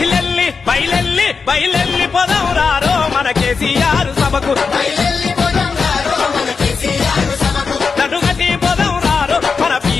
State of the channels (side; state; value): right; quieter; 5.1 dB